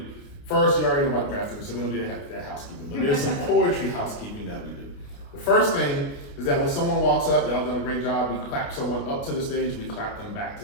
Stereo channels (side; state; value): right; late; 29 ms